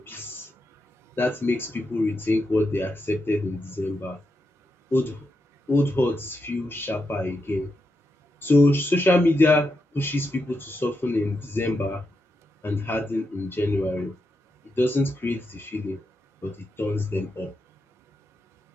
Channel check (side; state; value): both; normal; correlation 0.85